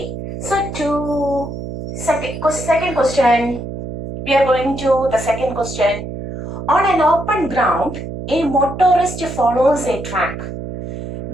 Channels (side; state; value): right; noise; hum, 8 dB below the sound